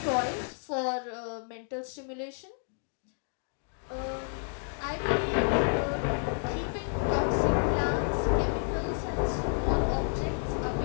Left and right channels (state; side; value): silent; right; 58 dB below the other